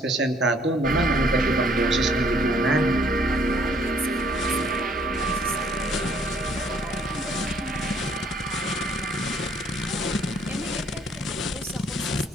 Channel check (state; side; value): normal; both; correlation 0.63